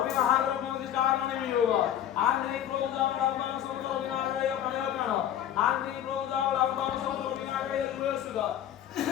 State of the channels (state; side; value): quieter; right; 10.7 dB